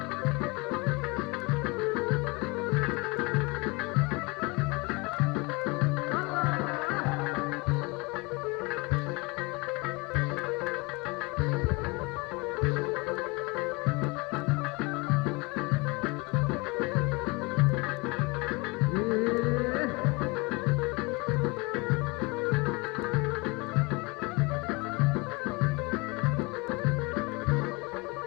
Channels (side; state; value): right; quieter; 26.6 dB